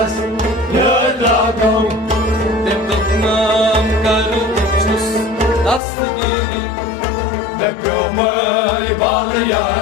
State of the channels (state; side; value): drops out; right; at 5.8 s